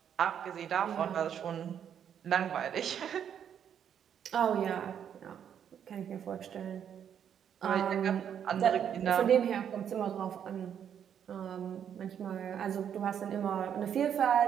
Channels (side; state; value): left; quieter; 8.7 dB